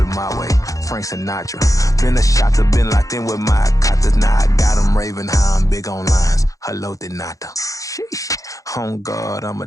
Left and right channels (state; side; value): late; right; 0.16 ms